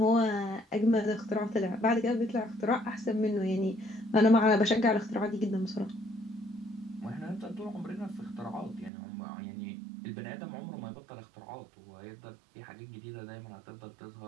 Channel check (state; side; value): drops out; left; at 8.9 s